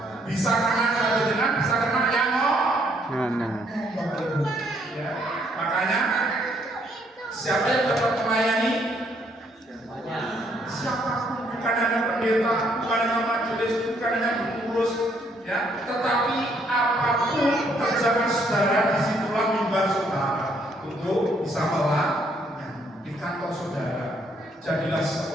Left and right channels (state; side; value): normal; both; correlation 0.69